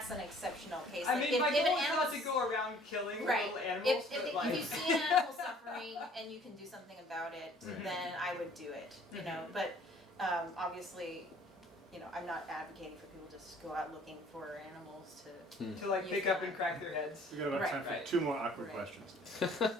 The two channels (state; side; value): normal; both; correlation 0.55